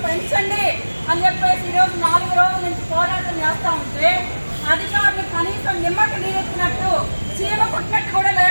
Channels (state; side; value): inverted; both; correlation -1.00